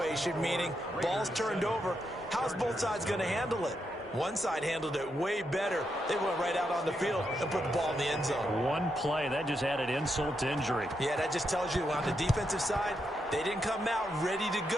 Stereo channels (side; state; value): both; normal; correlation 0.82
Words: meaning ball's turned over. How's both sides going to handle it? One side handled it way better. They went right out on the field and put the ball in the end zone. One play, that just added insult to injury. Yeah, that just tells you on the defensive side, they didn't come out ready to